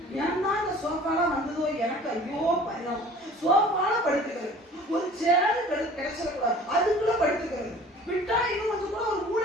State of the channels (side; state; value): both; normal; correlation 0.47